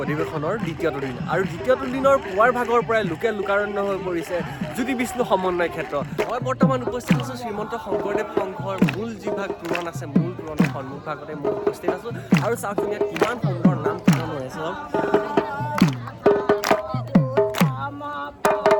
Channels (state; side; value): identical; both; correlation 1.00